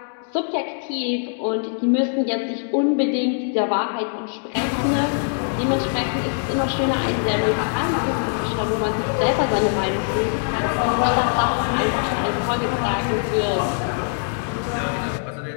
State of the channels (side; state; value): right; silent; 64 dB below the other